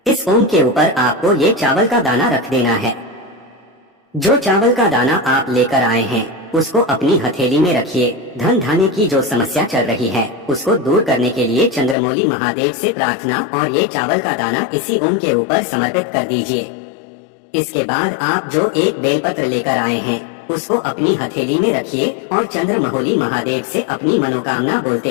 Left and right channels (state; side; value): drops out; right; at 12.0 s